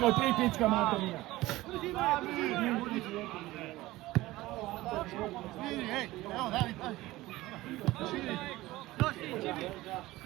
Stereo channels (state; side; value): quieter; left; 18.0 dB